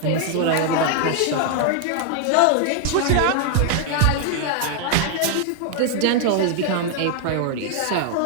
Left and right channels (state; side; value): different; both; correlation 0.00